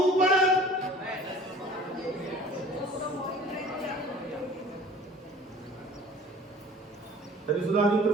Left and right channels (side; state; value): both; normal; correlation 0.47